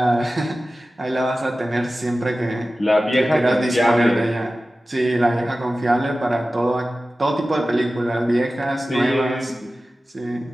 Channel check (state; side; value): normal; both; correlation 0.95